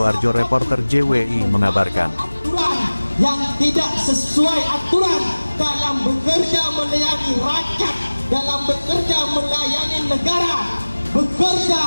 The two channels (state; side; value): inverted; both; correlation -1.00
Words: reporter JWI mengabarkan. Yang tidak sesuai aturan dalam bekerja melayani rakyat, dalam bekerja melayani negara,